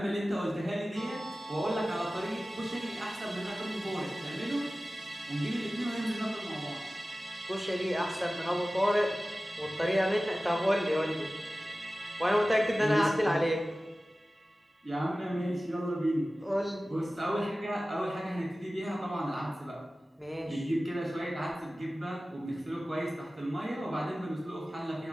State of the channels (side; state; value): both; normal; correlation 0.96